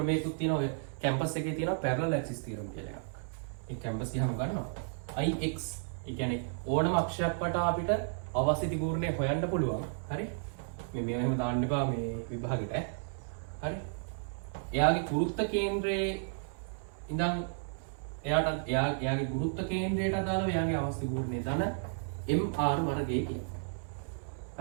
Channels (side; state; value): left; silent; 56 dB below the other